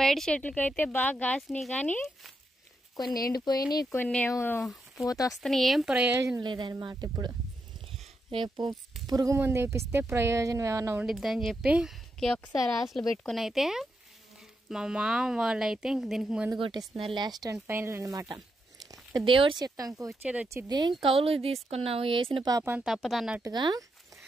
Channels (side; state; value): both; normal; correlation 0.83